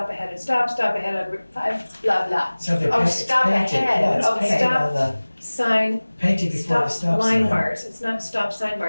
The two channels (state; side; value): inverted; both; correlation -1.00